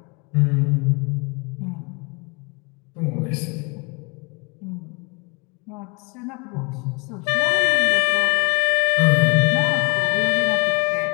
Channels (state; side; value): quieter; right; 31.8 dB